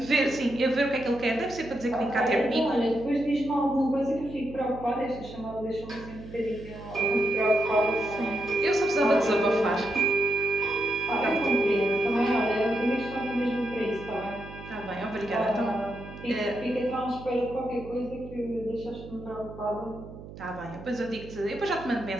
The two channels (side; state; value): right; noise; hum, 14 dB below the sound